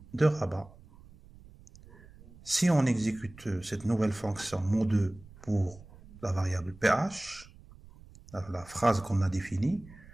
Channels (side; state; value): right; noise; rumble, 22 dB below the sound